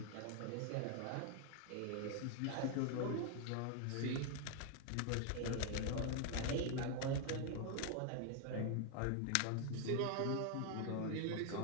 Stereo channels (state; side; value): different; both; correlation 0.01